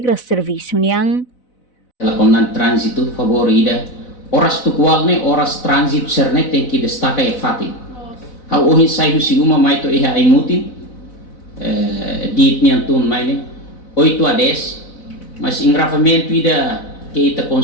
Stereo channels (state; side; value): late; right; 4.0 ms